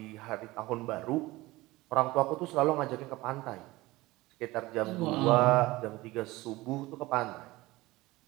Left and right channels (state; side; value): quieter; left; 19.7 dB